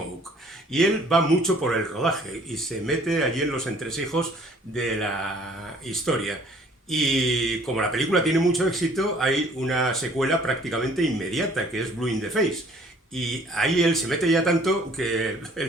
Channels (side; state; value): both; normal; correlation 0.57